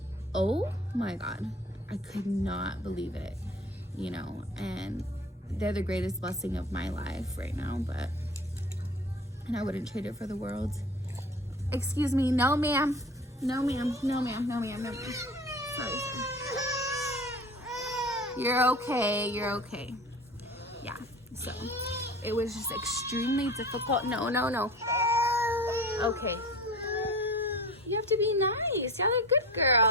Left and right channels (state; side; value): normal; both; correlation 0.38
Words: oh my God, I could not believe it, you know. And they're the greatest blessing of my life right now, and I wouldn't trade it for the world. Excuse me, no ma'am, no ma'am, no ma'am, no ma'am, no ma'am. Sorry. You're okay, you're okay. Yeah, so it was just extremely difficult. No. Okay. You have to be nice. Y'all are good